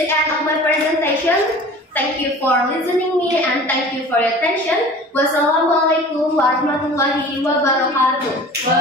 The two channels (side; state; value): both; normal; correlation 0.42